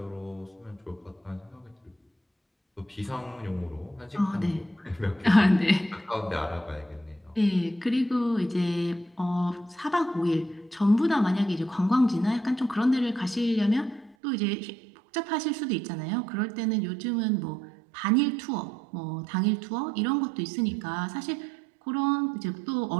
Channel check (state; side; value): drops out; left; at 14.2 s